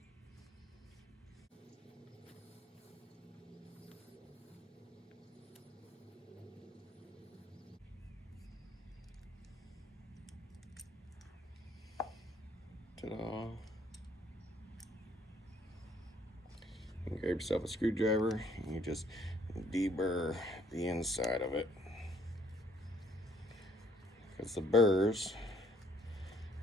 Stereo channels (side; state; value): both; normal; correlation 0.64